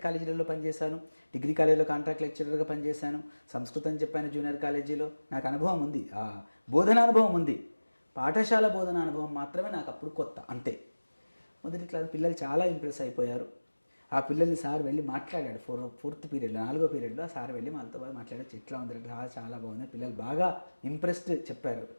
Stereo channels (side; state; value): both; inverted; correlation -1.00